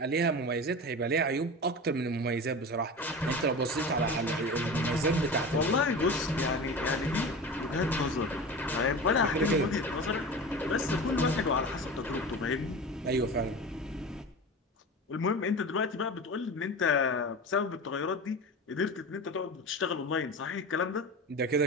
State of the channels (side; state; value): both; normal; correlation 0.31